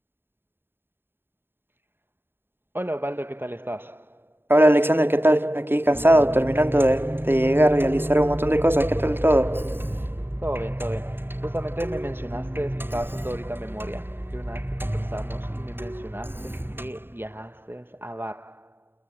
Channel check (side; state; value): left; late; 0.10 ms